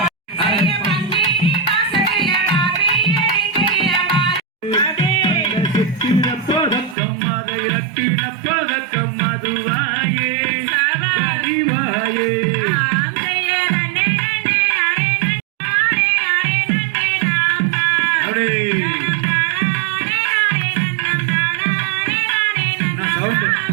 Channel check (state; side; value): drops out; left; at 7.0 s